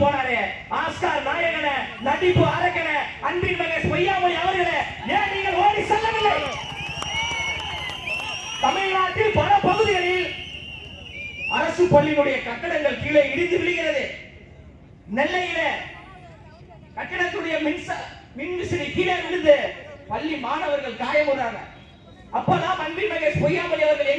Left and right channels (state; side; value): identical; both; correlation 1.00